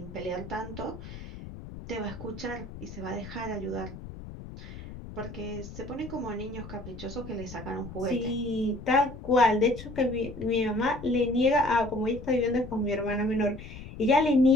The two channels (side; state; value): left; noise; rumble, 13 dB below the sound